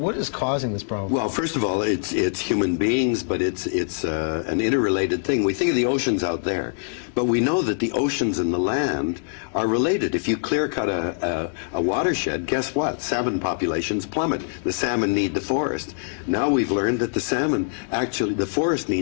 is causing this problem? Well, first of all, it's human beings, but it's an interrelated thing. We think of the oceans out there, but we know that the oceans and the land are related. If you clear cut a watershed, guess what? Salmon populations plummet. The salmon need the forest. Now we've learned that the salmon, actually, the forest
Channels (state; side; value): silent; right; digital silence